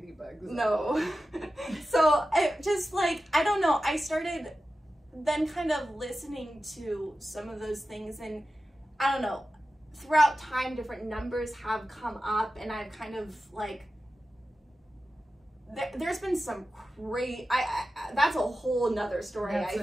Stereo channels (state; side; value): normal; both; correlation 0.93